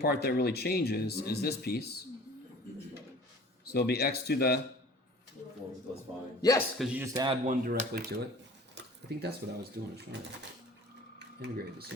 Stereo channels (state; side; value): normal; both; correlation 0.45